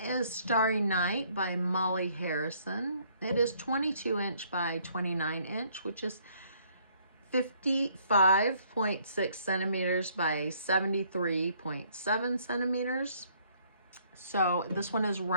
Starry Night by Molly Harrison. It is 22 inch by 29 inch, which is 55.6 centimeters by 73.7 centimeters. So this one is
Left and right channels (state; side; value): inverted; both; correlation -0.64